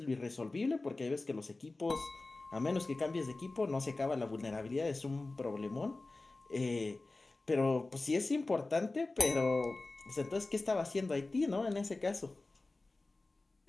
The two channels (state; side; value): quieter; right; 3.2 dB